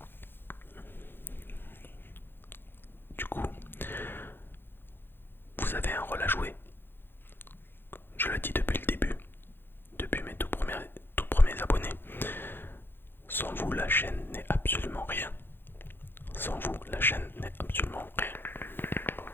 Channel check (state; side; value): late; right; 0.10 ms